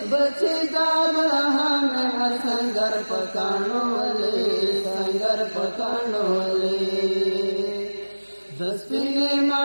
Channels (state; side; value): inverted; both; correlation -1.00